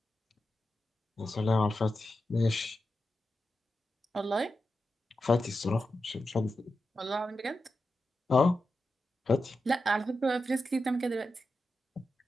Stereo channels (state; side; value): normal; both; correlation 0.90